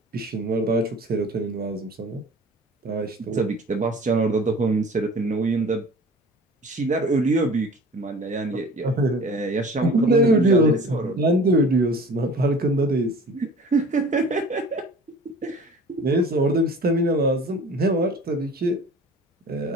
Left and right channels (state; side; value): normal; both; correlation 0.44